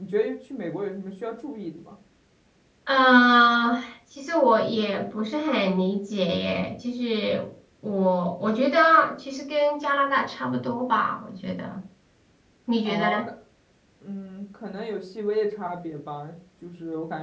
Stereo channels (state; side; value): identical; both; correlation 1.00